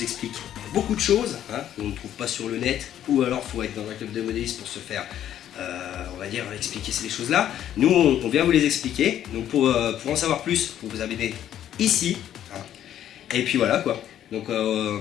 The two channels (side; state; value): right; quieter; 11.0 dB